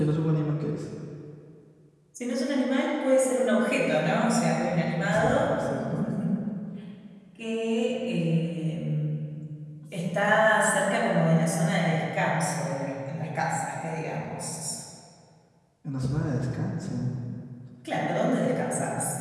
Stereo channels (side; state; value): both; identical; correlation 1.00